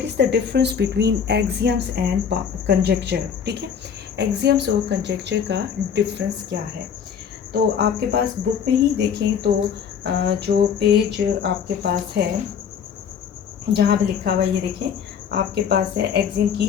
is the difference between axioms and conjecture. ठीक है, एक्सियम्स और कंजेक्चर का डिफरेंस क्या है। तो आपके पास बुक में ही देखें तो जो पेज आपके पास है जहाँ पे लिखा हुआ है, ये देखें आपके पास है एक्सियम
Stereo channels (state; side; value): quieter; right; 7.4 dB